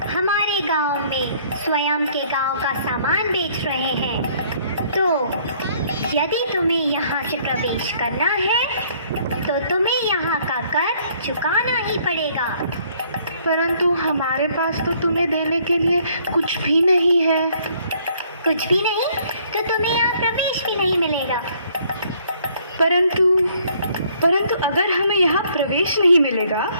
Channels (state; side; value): inverted; both; correlation -0.63